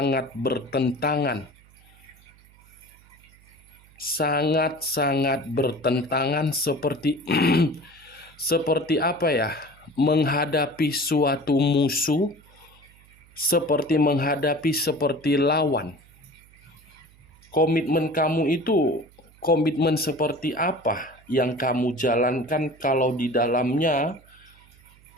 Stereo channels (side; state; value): right; noise; hum, 27 dB below the sound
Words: bertentangan. Sangat-sangat bertentangan seperti seperti apa ya? Menghadapi suatu musuh, seperti menghadapi seperti lawan. Komitmen kamu itu komitmen seperti apa yang kamu jalankan kalau di dalamnya